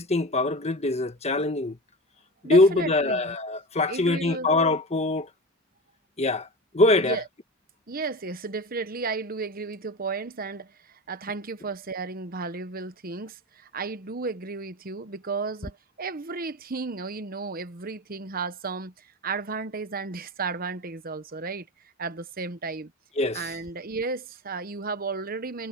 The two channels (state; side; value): normal; both; correlation 0.28